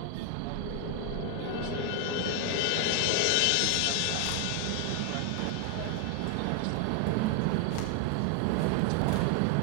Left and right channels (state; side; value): different; both; correlation 0.01